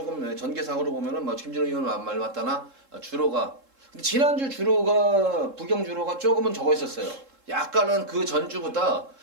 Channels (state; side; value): late; left; 3.7 ms